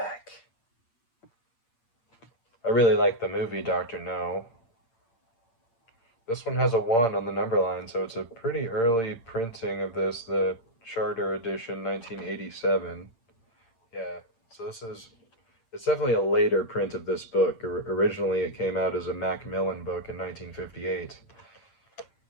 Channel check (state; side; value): late; right; 8.7 ms